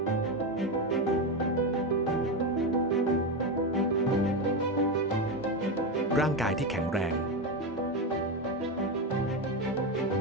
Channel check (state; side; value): normal; both; correlation 0.13